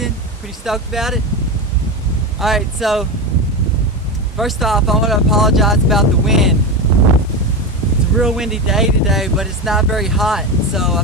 Pretty stoked about it. Alright, so first off, I want to apologize about the wind. It's a real windy day today, but it's not very hot, so I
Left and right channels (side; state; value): both; normal; correlation 0.18